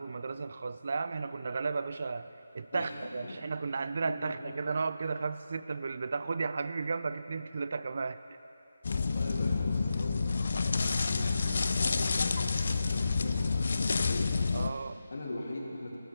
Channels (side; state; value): both; inverted; correlation -0.89